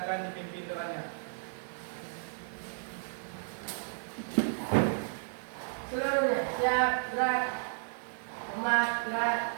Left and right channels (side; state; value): left; silent; 56 dB below the other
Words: dipimpin doanya. Seluruhnya siap, gerak, umat